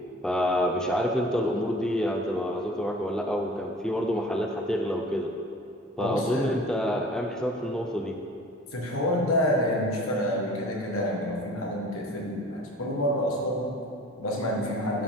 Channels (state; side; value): normal; both; correlation 0.45